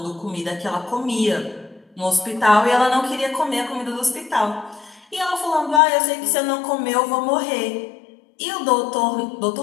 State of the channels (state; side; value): drops out; right; at 5.8 s